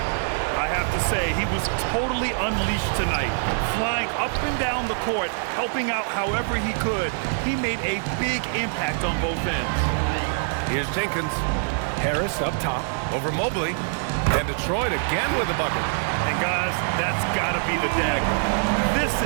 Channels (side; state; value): left; silent; digital silence